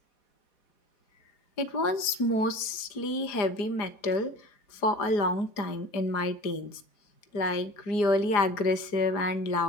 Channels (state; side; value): late; right; 4.9 ms